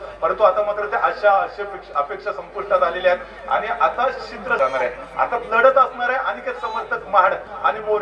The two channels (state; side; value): identical; both; correlation 1.00